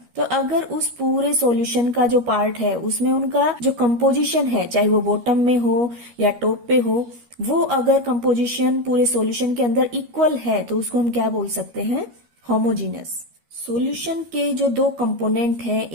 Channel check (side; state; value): left; late; 13 ms